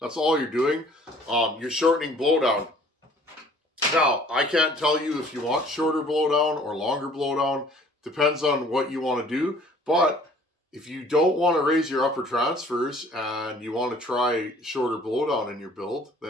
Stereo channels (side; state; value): both; normal; correlation 0.54